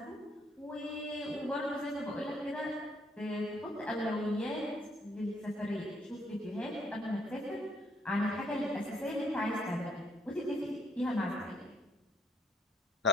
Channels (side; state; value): both; normal; correlation 0.70